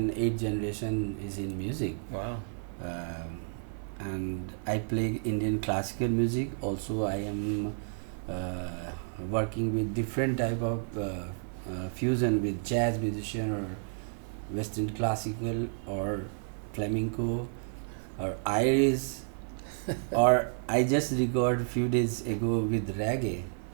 8 generation is in music. Wow. And I play Indian classical music. Also, I am working with different type of fusion with jazz musician or Western classical or flamenco or Irish or I just recorded few days ago with reggae.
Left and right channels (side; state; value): left; silent; 57 dB below the other